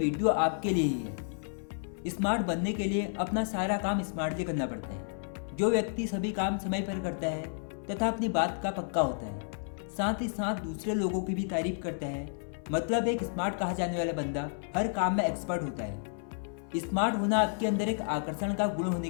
आपके लिए ही है। स्मार्ट बनने के लिए अपना सारा काम स्मार्टली करना पड़ता है। जो व्यक्ति सभी काम समय पर करता है तथा अपनी बात का पक्का होता है, साथ ही साथ दूसरे लोगों की भी तारीफ करता है, मतलब एक स्मार्ट कहा जाने वाला बंदा हर काम में एक्सपर्ट होता है। स्मार्ट होना आपके अंदर एक आकर्षण का गुण होने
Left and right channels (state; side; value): silent; right; 57 dB below the other